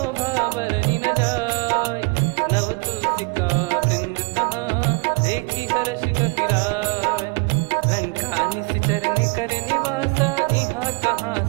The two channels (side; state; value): left; quieter; 31.1 dB